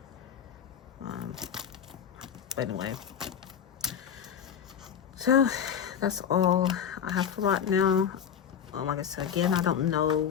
But anyway, so that's all I have for right now. Like I said again, I don't know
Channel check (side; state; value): right; quieter; 8.3 dB